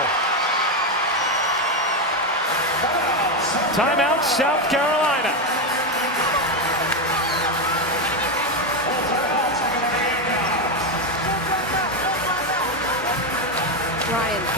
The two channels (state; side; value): normal; both; correlation 0.09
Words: Timeout. South Carolina. Ryan,